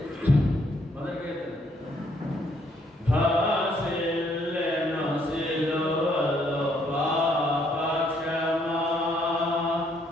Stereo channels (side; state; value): both; normal; correlation 0.69